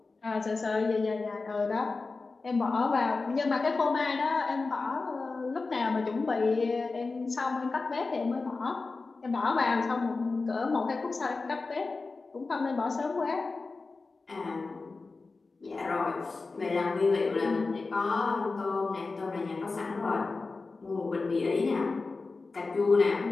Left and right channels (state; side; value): quieter; right; 3.9 dB